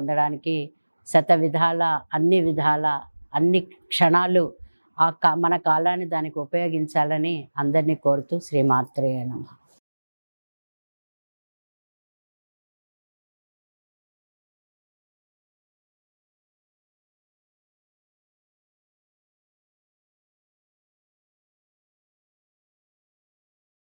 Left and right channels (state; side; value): inverted; both; correlation -1.00